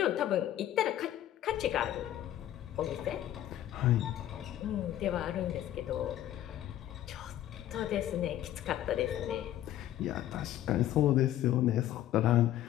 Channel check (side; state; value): right; quieter; 12.5 dB